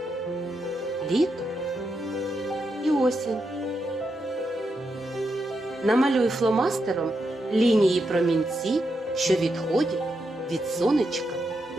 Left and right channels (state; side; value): normal; both; correlation 0.84